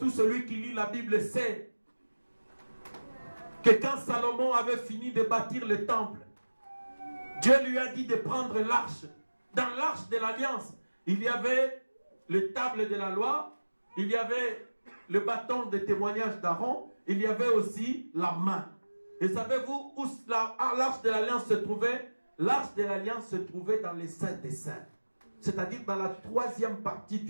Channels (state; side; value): inverted; both; correlation -1.00